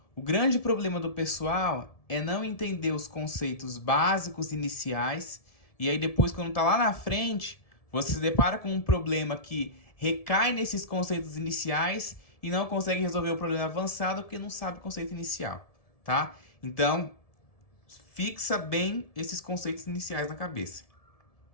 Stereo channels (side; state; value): right; late; 1.7 ms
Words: o grande problema do pessoal é não entender os conceitos básicos iniciais e aí depois, quando tá lá na frente, você se depara com um problema que recai nesses conceitos iniciais e não consegue resolver o problema avançado porque não sabe o conceito inicial, tá? Então, fixa bem esses conceitos iniciais na cabeça.